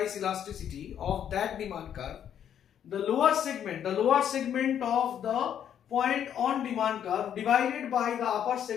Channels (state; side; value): quieter; right; 9.4 dB